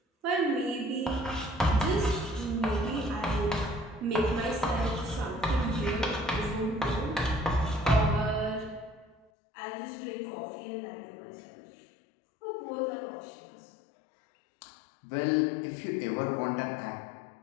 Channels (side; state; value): right; drops out; at 9.2 s